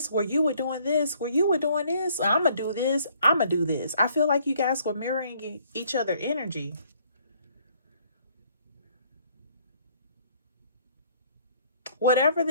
where you were doing this, where you were doing this. I'm gonna do this. I'm gonna do this. I feel like you guys were mirroring each other energy. Whatever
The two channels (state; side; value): inverted; both; correlation -0.63